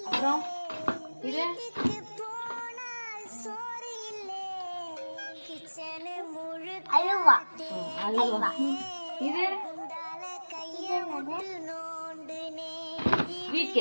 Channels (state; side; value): inverted; both; correlation -1.00